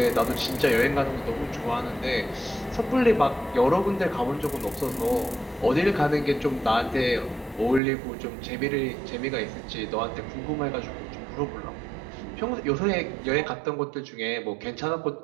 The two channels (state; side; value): drops out; left; at 7.8 s